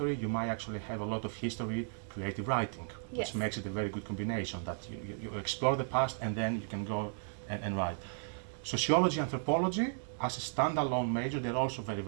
you might actually have a lot of history, creative writing, which makes it a very good combination, that you explore the past and then you can go and write. Sociology, anthropology, as a standalone major, they're also very,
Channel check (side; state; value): left; silent; digital silence